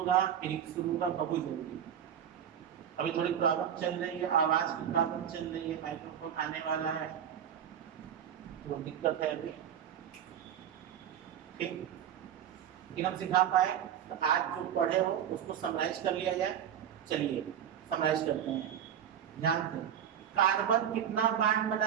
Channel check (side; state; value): left; quieter; 9.4 dB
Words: फिजिक्स शुरू होगा, बहुत जरूरी। अभी थोड़ी प्रॉब्लम चल रही है, आवाज की प्रॉब्लम चल रही है, माइक्रोफोन आने वाला है, तो दिक्कत है अभी। ठीक, लेकिन हम सिखा पाए तो आज जो पढ़े हो उसको समराइज कर लिया जाए। चलिए समराइज करते हैं, ध्यान से। कार्बन कितना बॉन्ड